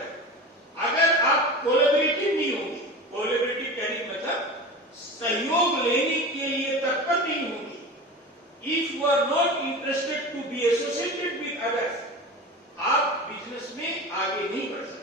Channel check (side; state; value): both; normal; correlation 0.31